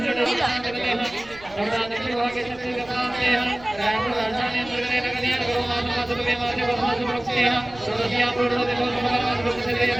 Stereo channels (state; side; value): noise; right; rumble, 22 dB below the sound